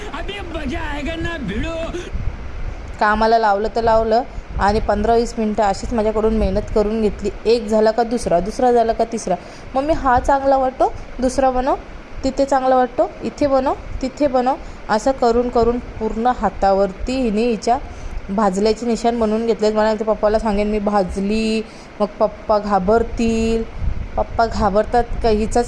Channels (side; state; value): both; identical; correlation 1.00